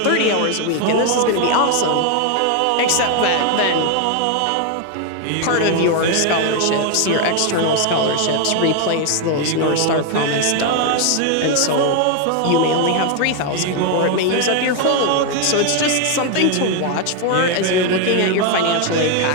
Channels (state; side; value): different; both; correlation 0.01